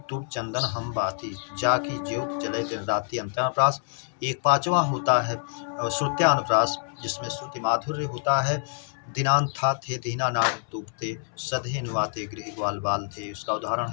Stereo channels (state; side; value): silent; right; 60 dB below the other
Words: तुम चंदन हम बाती, जाकी ज्योत जले दिन राति, अंत्यानुप्रास। एक पांचवा होता है श्रुत्यानुप्रास, जिसमें श्रुति माधुर्य होता है। दिनांत था थे दीना नाट तूपते, सधे नुआते गृह ग्वाल बाल थे, उसका उदाहरण